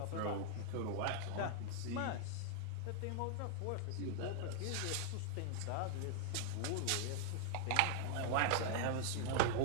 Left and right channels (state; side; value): different; both; correlation 0.00